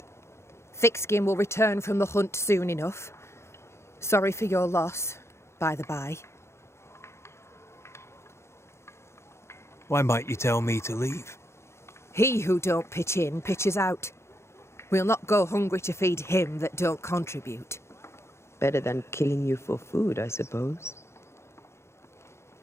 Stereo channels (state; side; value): late; right; 0.13 ms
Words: Thickskin will return from the hunt soon enough. Sorry for your loss, by the by. Why might you tell me to leave? He who don't pitch in, pitches out. We'll not go hungry to feed him that don't contribute. Better than killing you for food, I suppose.